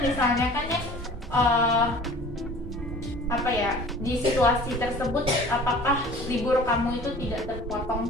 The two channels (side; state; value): both; normal; correlation 0.45